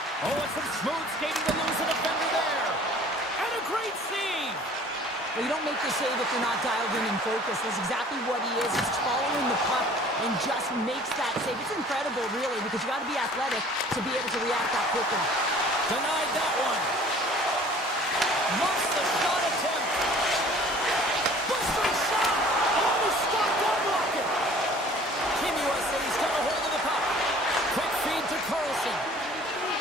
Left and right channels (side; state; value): both; normal; correlation 0.50